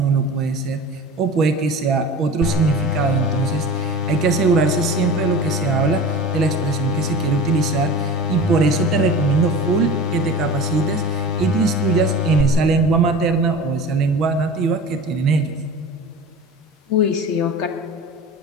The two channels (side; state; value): both; normal; correlation 0.34